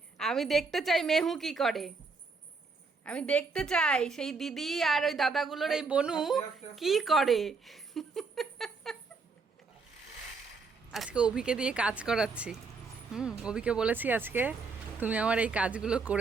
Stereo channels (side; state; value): left; quieter; 4.3 dB